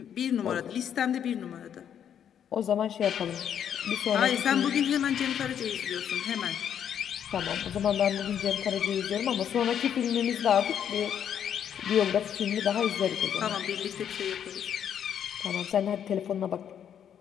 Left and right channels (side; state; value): right; quieter; 9.0 dB